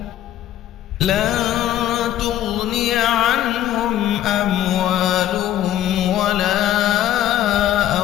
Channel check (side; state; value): right; quieter; 12.2 dB